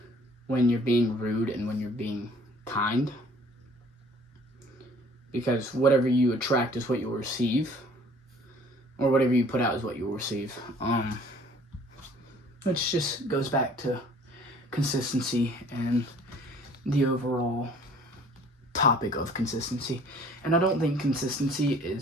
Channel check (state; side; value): normal; both; correlation 0.53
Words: when you're being rude and when you're being kind, because whatever you attract is what you'll receive, or whatever you put out is what you'll receive. Which just goes back to consistency and the overall topic of consistency. And I don't think consistency